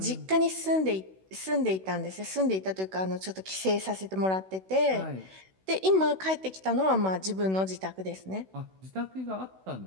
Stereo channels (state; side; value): late; left; 16 ms